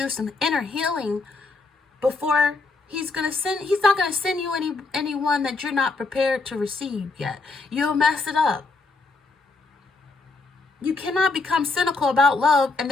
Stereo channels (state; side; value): quieter; right; 3.7 dB